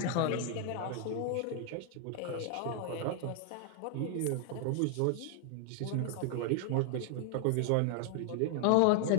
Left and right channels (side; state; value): both; different; correlation 0.00